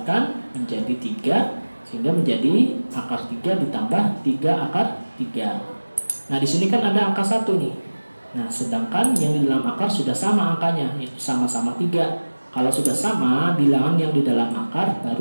menjadi 3, sehingga menjadi akar 3 ditambah 3 akar 3. Nah, di sini kan ada angka 1 nih. Nah, sedangkan yang di dalam akar sudah sama angkanya, yaitu sama-sama 3. Kalau sudah sama bilangan yang di dalam akar, baru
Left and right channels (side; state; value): both; inverted; correlation -1.00